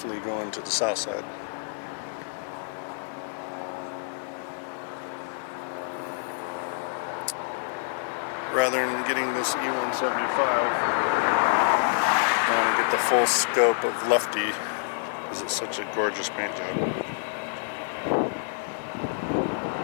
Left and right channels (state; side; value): silent; right; digital silence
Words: going to the south side. Rather than getting this E175, I want to get the full scope of Lefty because it's such a gorgeous paint job.